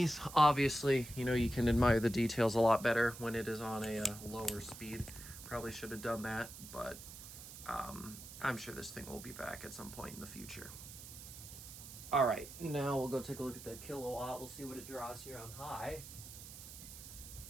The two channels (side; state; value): right; noise; hiss, 13 dB below the sound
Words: Obviously, you know, you can admire the details a lot better when it is on a lower speed. Probably should have done that, but I'm sure this thing will be back at some point in the future. All right, now we'll go take a look at the kilowatt. We'll see what it draws here on high.